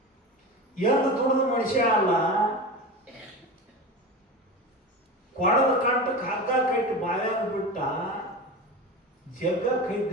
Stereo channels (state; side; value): normal; both; correlation 0.27